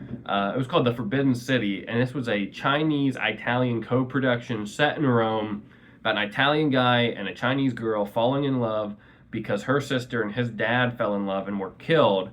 it was called The Forbidden City, and this was a Chinese-Italian co-production set in Rome about an Italian guy and a Chinese girl falling in love because her sister and his dad fell in love and were killed,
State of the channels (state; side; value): identical; both; correlation 1.00